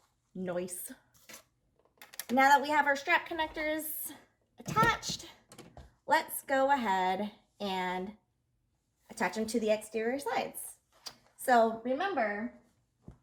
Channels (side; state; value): both; identical; correlation 1.00